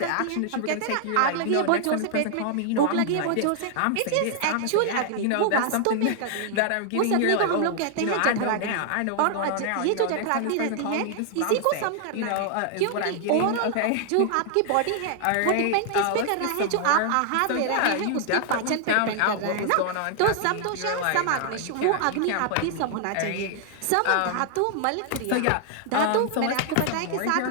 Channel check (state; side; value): different; both; correlation 0.00